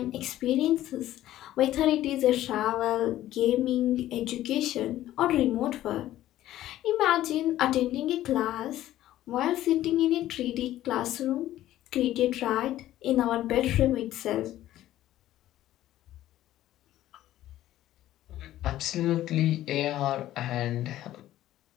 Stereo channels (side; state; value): right; quieter; 13.8 dB